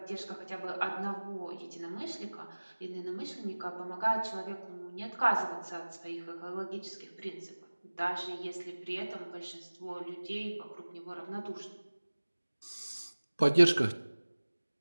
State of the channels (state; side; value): inverted; both; correlation -1.00